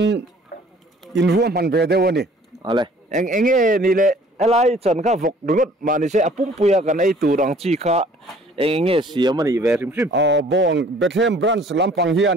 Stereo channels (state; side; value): normal; both; correlation 0.55